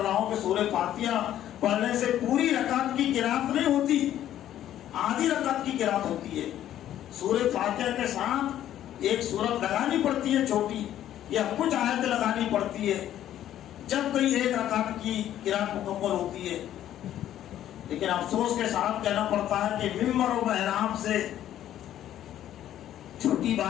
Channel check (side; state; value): right; quieter; 11.8 dB